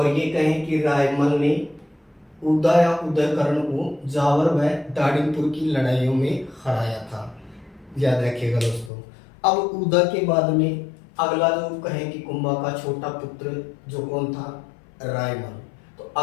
ये कहें कि रायमल ने उदा या उदयकरण को जावर व दाड़ीपुर की लड़ाइयों में हराया था, याद रखिएगा दोस्तों। अब उदा के बाद में अगला जो कहें कि कुंभा का छोटा पुत्र जो कौन था, रायमल। तो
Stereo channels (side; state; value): right; drops out; at 8.9 s